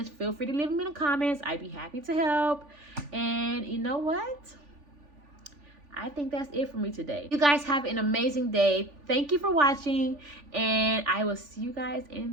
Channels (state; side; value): late; left; 3.4 ms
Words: feel free to leave them in the comments. I'd be happy to help. And you know what? I think that's it for me today. You guys have an amazing day. Thank you for watching, and I will see you guys